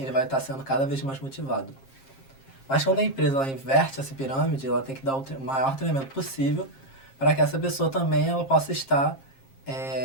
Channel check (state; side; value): late; right; 7.5 ms